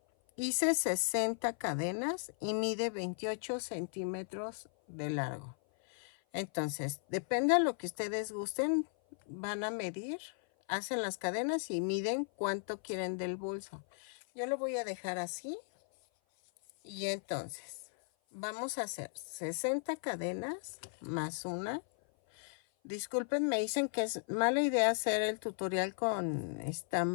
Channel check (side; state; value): right; silent; 54 dB below the other